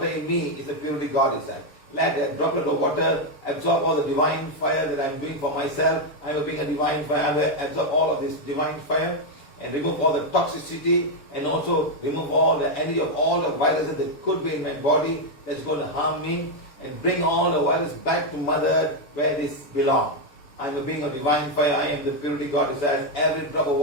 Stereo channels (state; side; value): late; right; 6.9 ms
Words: in me is a purity God desires. Let that droplet of water absorb all the divine fire that I'm doing for myself. I'm being a divine fire. I'm going to absorb all of this divine fire and remove all the toxicity and also remove all the energy of all the viruses that could be in my body that's going to harm me and bring all the virus back to Mother Earth where this belongs. I am a being of divine fire. I am the purity God desires. Every drop of